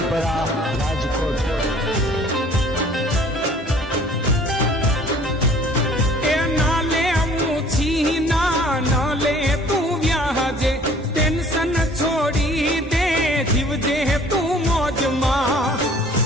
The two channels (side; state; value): both; normal; correlation 0.53